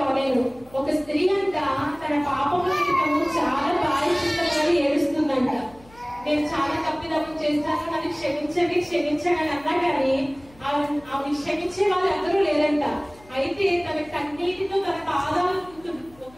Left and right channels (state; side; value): noise; left; hum, 25 dB below the sound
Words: నేను ఒక స్త్రీ అంట తన పాపముల నిమిత్తము చాలా ప్రాయశ్చిత్తపడి ఏడుస్తుందంట. నేను చాలా తప్పిదమ్ము చేస్తాను, నన్ను క్షమించండి అని అన్నా కానీ ఆమె క్షమించే వాళ్ళందరూ లేరంట. అయితే తన కన్నీటితో తన పాదాలు ఒక